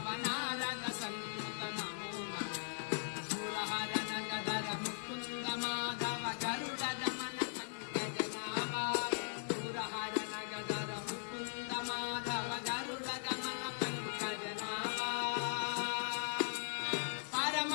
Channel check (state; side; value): silent; right; 51 dB below the other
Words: सन्नुत नमो नमो शूलहरण गदर मुकुन्द माधव गरुड गमन पंकजनामा शूलहरण गदर मुकुन्द माधव गरुड गमन पंकजनामा परम